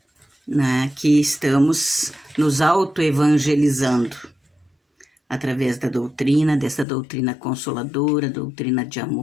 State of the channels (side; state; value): right; drops out; at 6.9 s